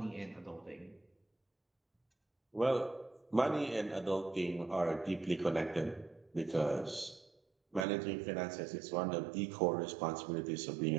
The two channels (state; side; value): drops out; left; at 7.9 s